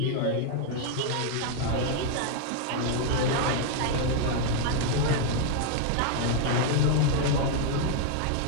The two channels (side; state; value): both; different; correlation 0.00